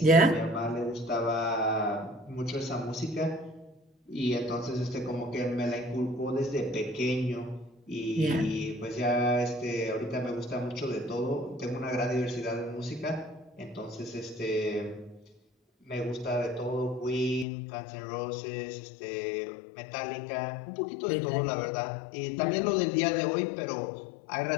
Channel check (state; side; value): drops out; right; at 17.4 s